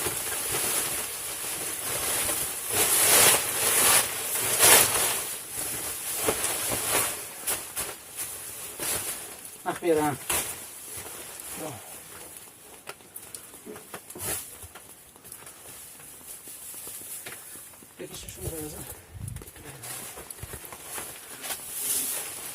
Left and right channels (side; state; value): both; identical; correlation 1.00